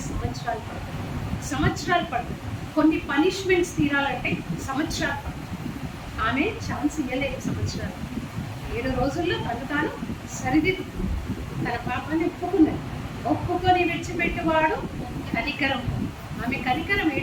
సంవత్సరాలు పడుతుంది. కొన్ని పనిష్మెంట్స్ తీరాలంటే సంవత్సరాలు పడుతుంది. ఆమె ఛాన్స్ ఇవ్వలేదు సంవత్సరాలు. 7 రోజుల్లో తాను సరిదిద్దు తన పాపాన్ని ఒప్పుకొని విడిచిపెట్టేవాడు కనికరం. ఆమె కనికరం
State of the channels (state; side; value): identical; both; correlation 1.00